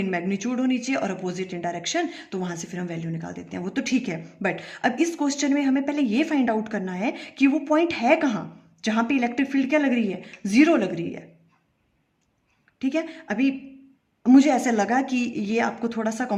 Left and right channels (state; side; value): identical; both; correlation 1.00